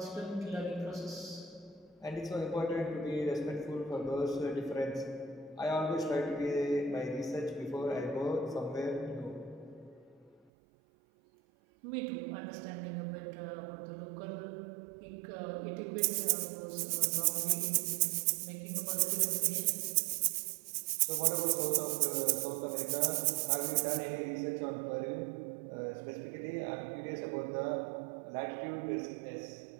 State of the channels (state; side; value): drops out; left; at 10.4 s